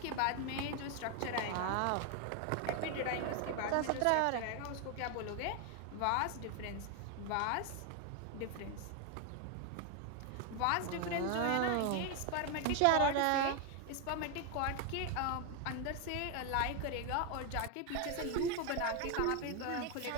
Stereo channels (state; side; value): different; both; correlation 0.01